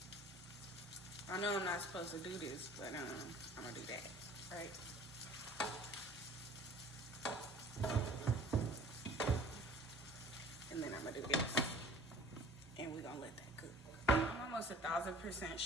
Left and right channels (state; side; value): normal; both; correlation 0.48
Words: I know I'm not supposed to do this, but I'm gonna do that, right? And then I'm gonna do this, and we're gonna let that cook. I'm almost 1000%